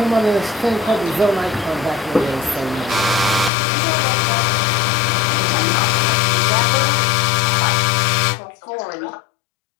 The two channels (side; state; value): right; drops out; at 3.5 s